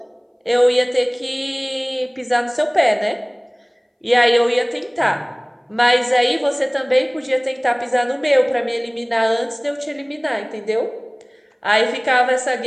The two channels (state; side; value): identical; both; correlation 1.00